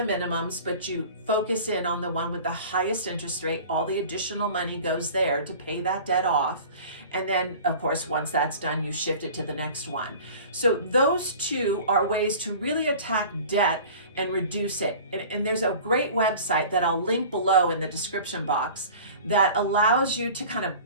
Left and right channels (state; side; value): inverted; both; correlation -0.42